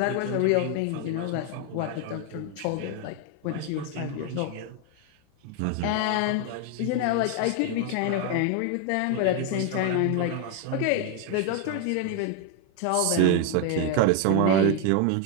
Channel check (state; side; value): different; both; correlation 0.01